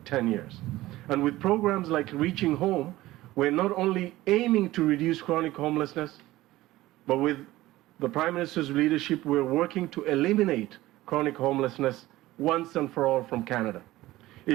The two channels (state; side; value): quieter; left; 17.1 dB